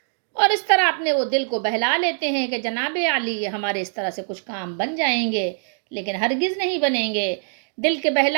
اور اس طرح اپنے وہ دل کو بہلا لیتے ہیں کہ جناب علی ہمارے اس طرح سے کچھ کام بن جائیں گے، لیکن ہرگز نہیں بنیں گے۔ دل کے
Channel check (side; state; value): left; silent; digital silence